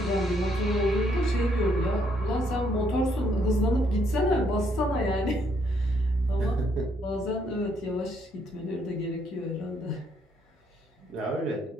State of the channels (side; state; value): both; normal; correlation 0.71